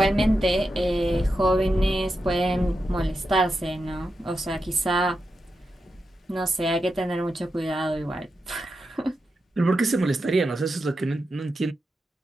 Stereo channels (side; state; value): both; normal; correlation 0.88